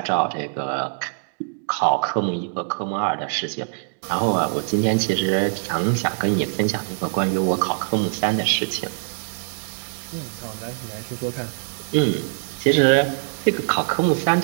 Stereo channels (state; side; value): silent; left; digital silence